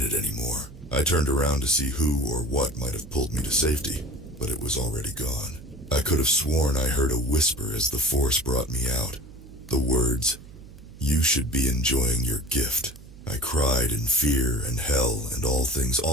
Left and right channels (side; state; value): right; noise; hum, 18 dB below the sound